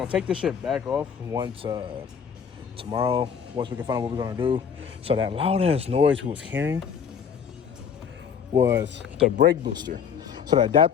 take this shit back off once tomorrow, once we can find out what we're gonna do. So that loud ass noise we was hearing was the brake booster. So the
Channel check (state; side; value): quieter; right; 7.2 dB